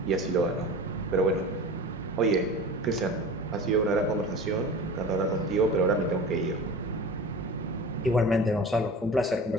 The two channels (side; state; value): both; normal; correlation 0.35